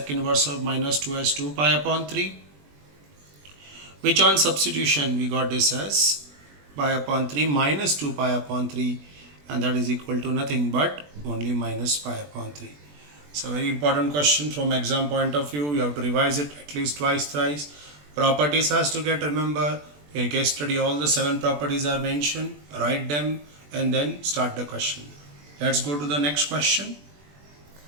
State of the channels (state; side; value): late; left; 20 ms